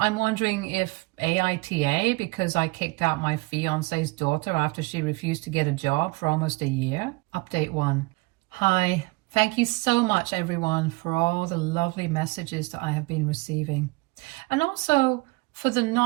wondering if aita, because I kicked out my fiance's daughter after she refused to get a job for almost a year. Update 1. Hi. Thank you so much, everyone, for all the lovely messages that I have been receiving. And also for the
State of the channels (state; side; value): quieter; left; 24.7 dB